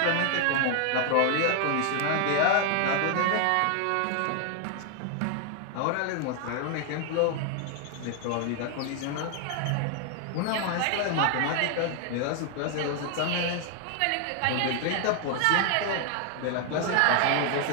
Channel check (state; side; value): different; both; correlation 0.00